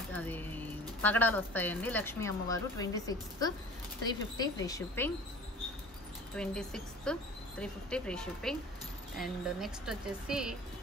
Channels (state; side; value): normal; both; correlation 0.43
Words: అది పగడాలు వస్తాయండి లక్ష్మీ అమ్మవారు. 26th 350 free shipping 26th 350 free shipping. And next వచ్చేసి